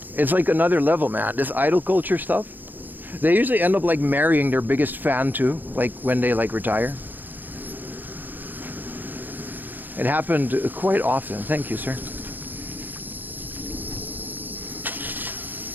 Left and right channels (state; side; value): late; left; 0.087 ms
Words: It's like another level, man. This idol culture stuff. They usually end up like marrying their biggest fan too, like when they like retire. It happened quite often. Thank you, sir.